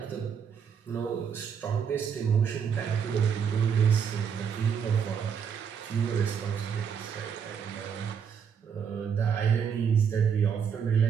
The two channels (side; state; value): left; quieter; 7.2 dB